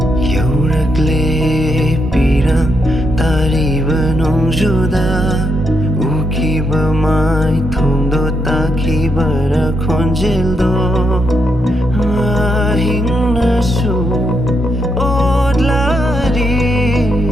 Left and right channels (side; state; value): both; normal; correlation 0.80